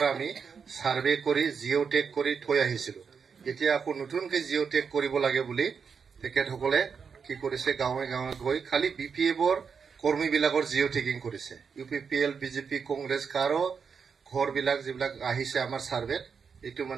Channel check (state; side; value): quieter; left; 6.1 dB